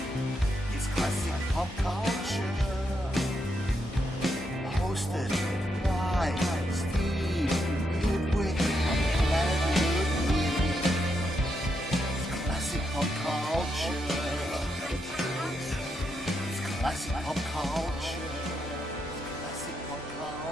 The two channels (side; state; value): both; normal; correlation 0.81